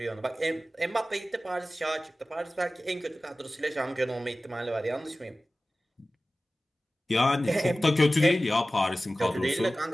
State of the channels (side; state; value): both; normal; correlation 0.96